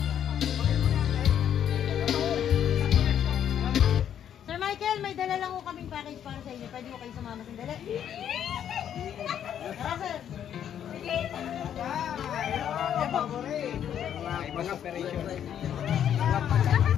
Michael, may dala lang ko kaming package para sa inyo. Pwede mo kayo sumama sandali? Tara, sir. Ibang operation.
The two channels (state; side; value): quieter; right; 9.6 dB